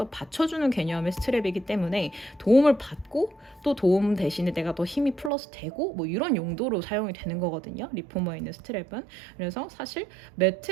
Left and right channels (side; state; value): left; drops out; at 5.3 s